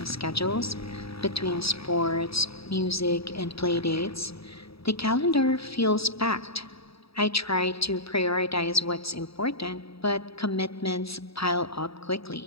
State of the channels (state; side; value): late; right; 0.77 ms